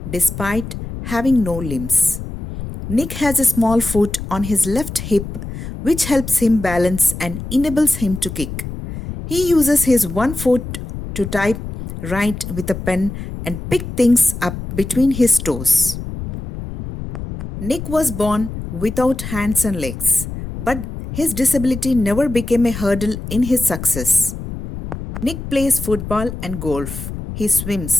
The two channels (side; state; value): left; noise; rumble, 8 dB below the sound